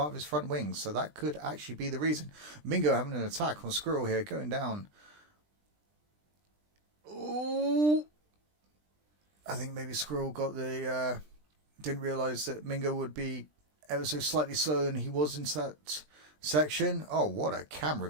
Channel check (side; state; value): left; late; 20 ms